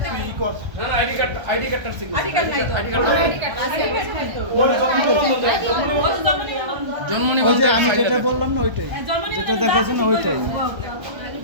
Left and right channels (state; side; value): late; left; 1.3 ms